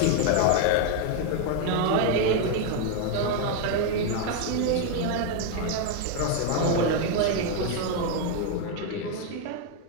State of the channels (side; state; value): both; different; correlation 0.01